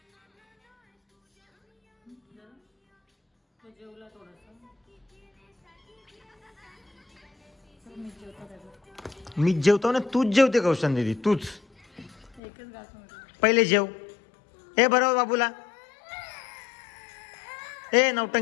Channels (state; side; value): drops out; right; at 12.4 s